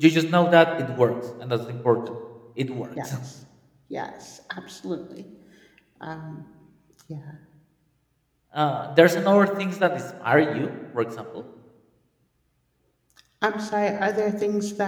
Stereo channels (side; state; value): both; identical; correlation 1.00